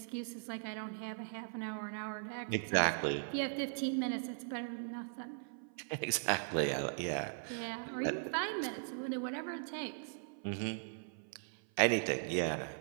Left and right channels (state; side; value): silent; left; 52 dB below the other